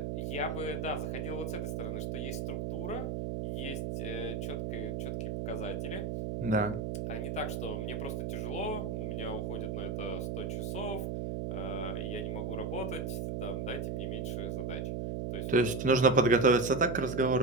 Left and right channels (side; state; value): right; noise; hum, 2 dB below the sound